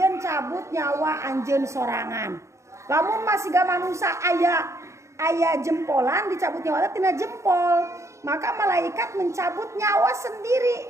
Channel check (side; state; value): left; late; 0.14 ms